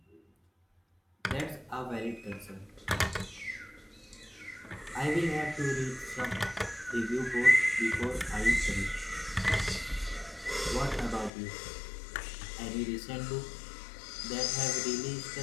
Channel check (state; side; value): drops out; right; at 11.3 s